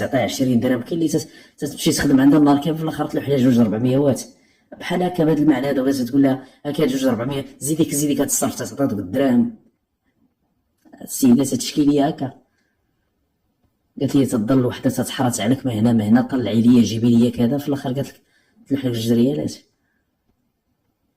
20 درهم. كاين اللي تمشي تخدم عندها النهار كامل في الاخر تلوح لها جوج 400 وات بحال هكا بهذا المعنى هذا، ولا تقول لها هاكا جوج 400 زيديك هتصرف تعطيها دوك الدراهم. السيده تشكيليه هكا، قالت لي تضل وحده تتحرط عليك ما هنا طلعي لي جيبي لي كذا، في الاخر قالت لك تلوح لك جوج ريالات.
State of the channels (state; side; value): identical; both; correlation 1.00